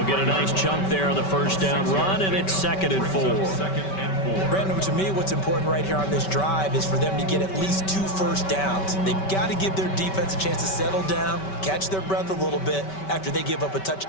get a nice chunk there on the first down run, and it's 2nd and 4. Brandon, to me, what's important right here on this drive is for them to get at least 2 first downs. They've got to give their defense a chance to settle down, catch their breath a little bit after they give up a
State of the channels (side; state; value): right; late; 5.2 ms